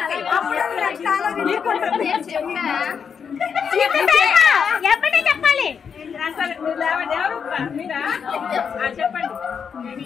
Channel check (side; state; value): right; quieter; 6.7 dB